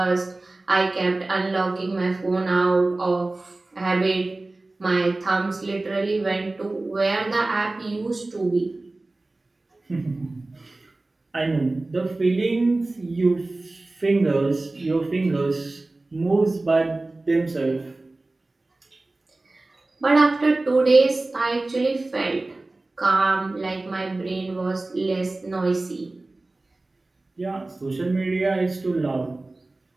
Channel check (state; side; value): quieter; left; 3.0 dB